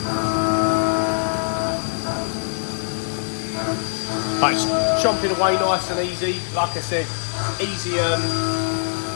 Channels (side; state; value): right; silent; 59 dB below the other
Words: But it's chomping away nice and easy. Like I said, easy, a